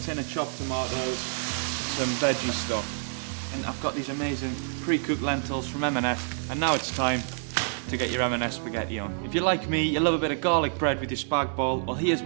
of chopped tomatoes, some veggie stock. And I've got these amazing pre-cooked lentils from M&S, and now it's time to get your M&S spaghetti on. If you're like me, you love a bit of garlic bread with your spag bol, well here's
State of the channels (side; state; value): left; silent; digital silence